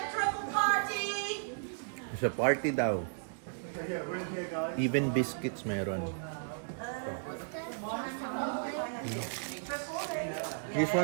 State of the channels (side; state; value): left; silent; digital silence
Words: Sa party daw. Even biscuits meron. This